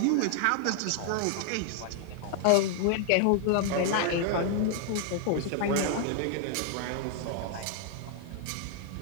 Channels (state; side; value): different; both; correlation 0.00